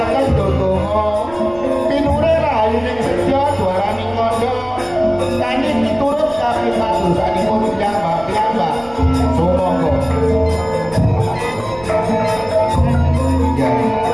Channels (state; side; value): noise; right; rumble, 21 dB below the sound